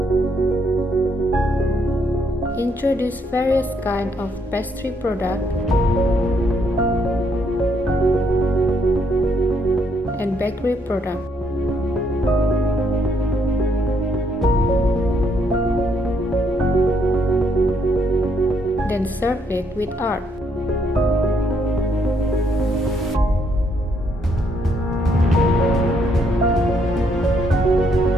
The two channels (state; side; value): normal; both; correlation 0.72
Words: introduce various kinds of pastry product, and bakery product. Then serve it with art.